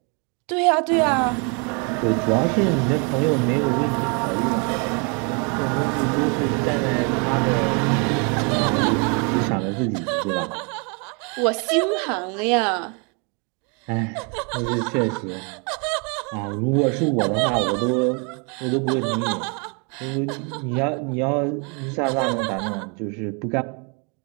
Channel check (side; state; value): left; quieter; 34.5 dB